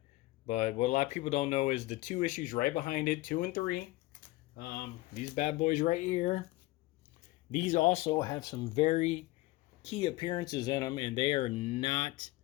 But what a lot of people don't know is the 2 issues right behind it, 2 and 3. These bad boys right here. These also have some very key appearances in them, and they are not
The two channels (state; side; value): quieter; right; 19.5 dB